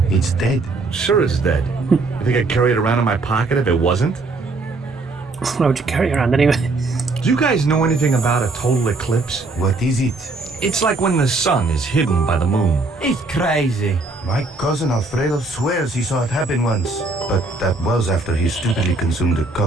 It's dead. Sure it's dead. You think I'd carry it around in my pocket if it wasn't? Why would you carry it around anyway? Do you guys know anything about a total eclipse? What is it? It's like when the sun is hidden by the moon. He's crazy. My cousin Alfredo swears he saw it happen once. But that was after he stupidly consumed a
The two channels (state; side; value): quieter; left; 3.4 dB